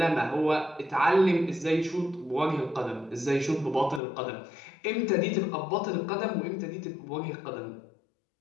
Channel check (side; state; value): right; drops out; at 4.0 s